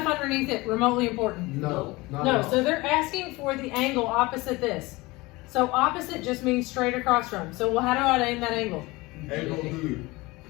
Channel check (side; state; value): right; quieter; 22.1 dB